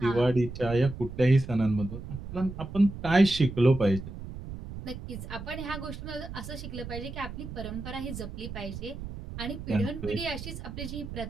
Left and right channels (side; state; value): right; noise; rumble, 10 dB below the sound